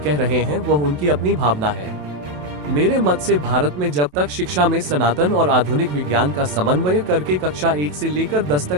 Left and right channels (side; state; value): left; late; 27 ms